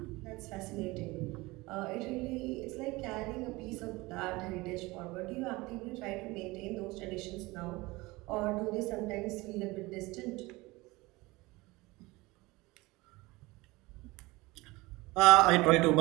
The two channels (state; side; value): quieter; left; 21.9 dB